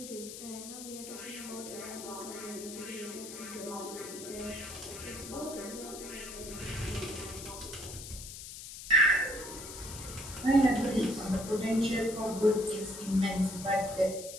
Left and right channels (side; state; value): left; noise; hiss, 11 dB below the sound